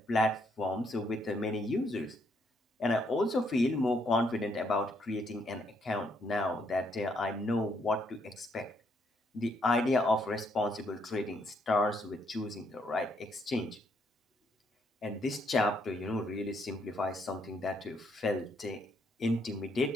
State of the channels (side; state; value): both; normal; correlation 0.72